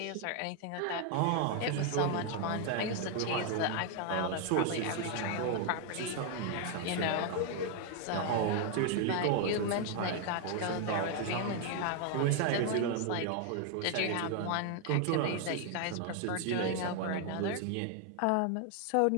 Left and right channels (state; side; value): different; both; correlation 0.00